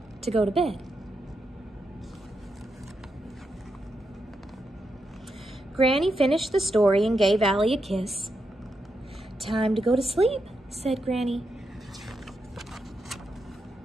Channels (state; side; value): normal; both; correlation 0.84